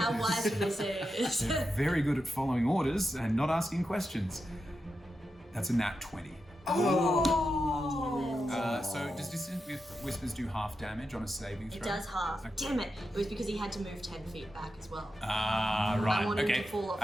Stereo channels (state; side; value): normal; both; correlation 0.88